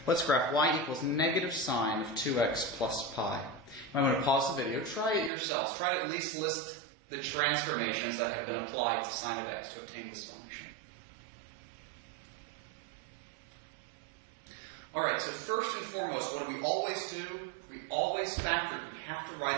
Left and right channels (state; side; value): drops out; left; at 5.3 s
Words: Let's graph y equals negative sine of 2x plus pi. I'm going to pause the video. Try it yourselves. Try to at least list the transformations that have been applied to sine of x to obtain this function. All right, so first and foremost, what do we always do? We always factor it. You have to